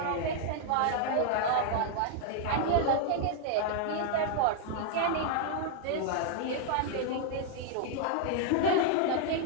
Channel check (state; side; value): different; both; correlation 0.00